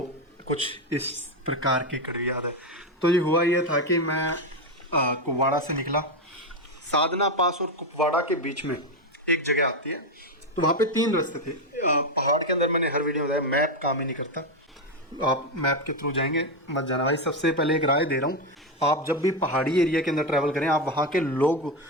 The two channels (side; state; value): both; normal; correlation 0.09